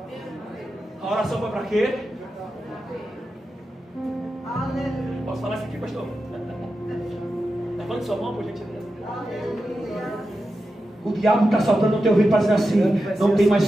A oração foi para quê? Posso falar isso aqui, pastor? Levante sua mão, por gentileza. O diabo está soprando no teu ouvido para dizer assim, não tem mais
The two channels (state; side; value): normal; both; correlation 0.90